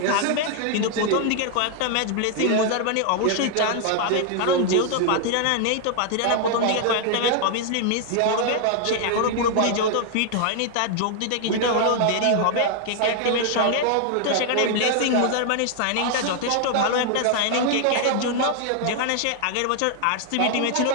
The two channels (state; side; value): different; both; correlation 0.00